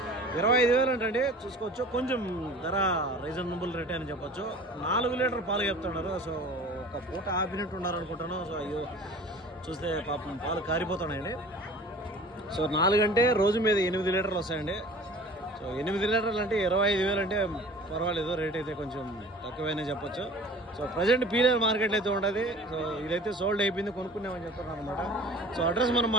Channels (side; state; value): both; normal; correlation 0.44